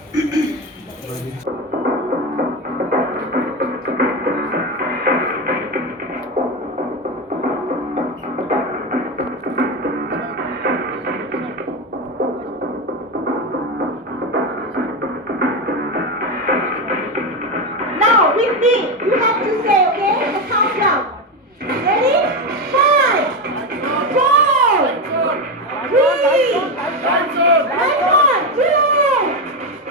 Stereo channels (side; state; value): both; normal; correlation 0.14